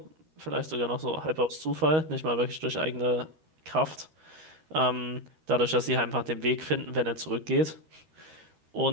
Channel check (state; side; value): late; left; 13 ms